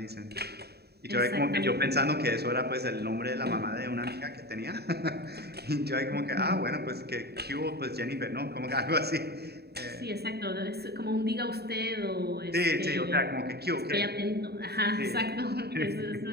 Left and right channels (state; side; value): late; left; 0.47 ms